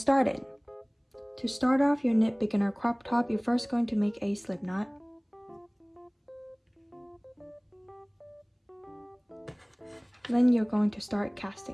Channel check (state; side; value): identical; both; correlation 1.00